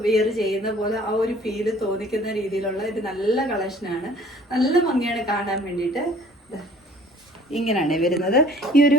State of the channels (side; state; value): both; normal; correlation 0.53